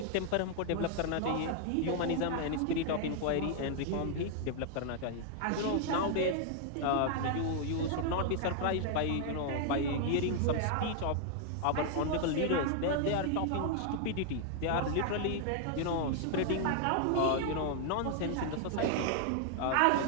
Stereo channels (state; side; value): different; both; correlation 0.00